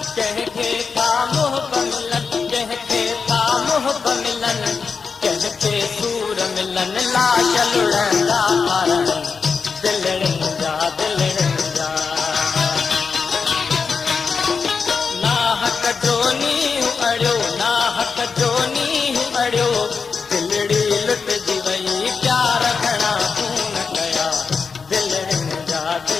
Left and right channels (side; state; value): right; quieter; 5.3 dB